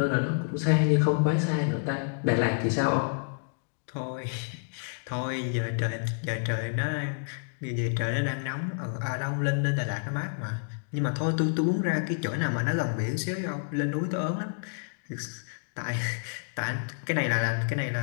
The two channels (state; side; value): silent; right; digital silence